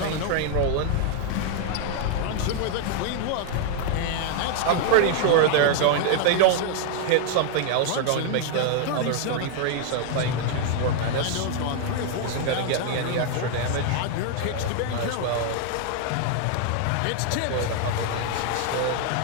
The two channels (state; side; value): different; both; correlation 0.00